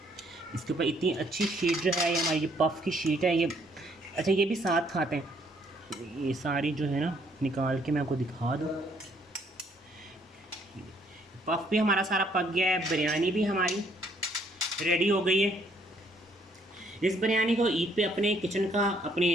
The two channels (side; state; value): both; normal; correlation 0.67